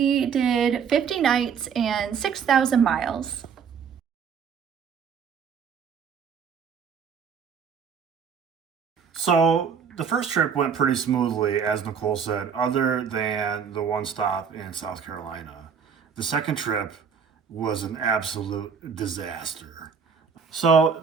did 50 nights and 6,000 miles. So the first trip went pretty smoothly, as Nicole said, other than the one stop in South Carolina. The second trip was an absolute disaster. So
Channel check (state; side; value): quieter; left; 6.7 dB